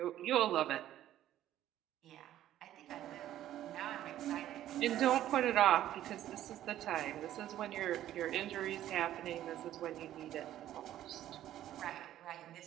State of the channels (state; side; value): quieter; left; 12.6 dB